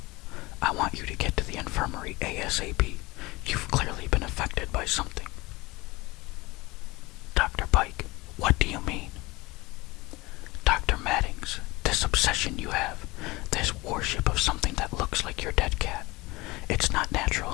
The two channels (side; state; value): right; quieter; 22.0 dB